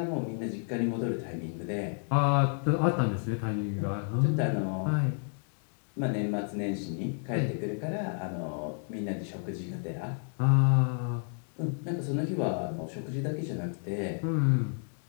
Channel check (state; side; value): silent; right; 57 dB below the other